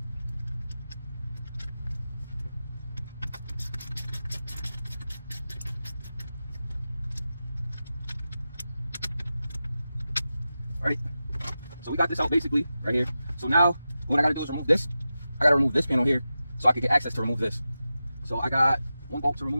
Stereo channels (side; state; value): both; inverted; correlation -0.93